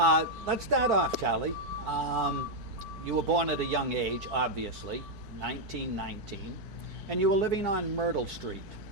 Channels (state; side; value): late; left; 4.5 ms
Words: let's start off, Charlie. You were born at a young age, obviously, 1919, and you were living on Myrtle Street.